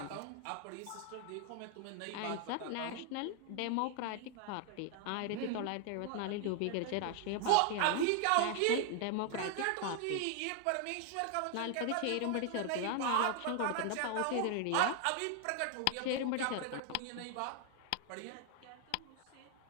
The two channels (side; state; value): both; different; correlation 0.00